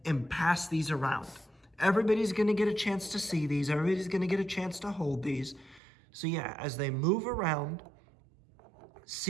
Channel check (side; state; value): left; drops out; at 5.8 s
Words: and pass these around. Everybody's gonna get a chance to see these. Everybody's gonna get a chance to hold these. So yeah, as they move around,